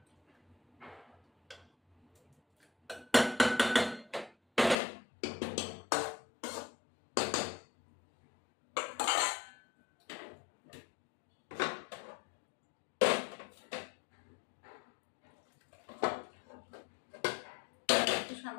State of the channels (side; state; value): right; drops out; at 4.8 s